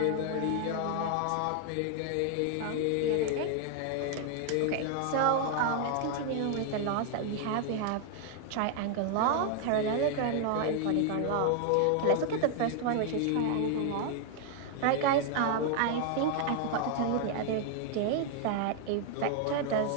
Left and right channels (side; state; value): both; different; correlation 0.00